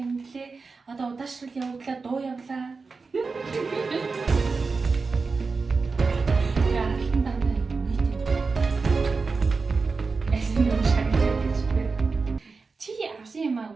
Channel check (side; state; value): left; quieter; 4.4 dB